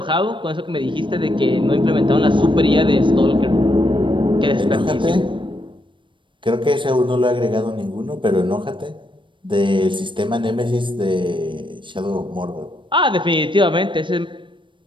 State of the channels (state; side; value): late; left; 0.24 ms